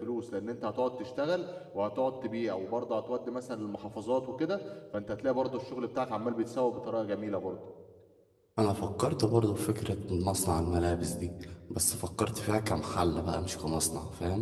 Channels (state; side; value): identical; both; correlation 1.00